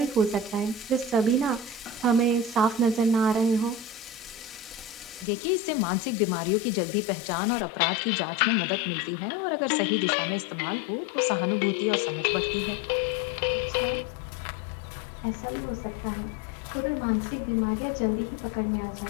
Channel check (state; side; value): drops out; right; at 5.2 s